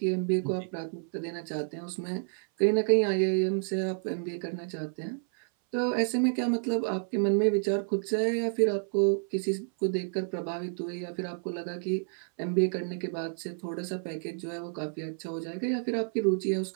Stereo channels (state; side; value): silent; left; 58 dB below the other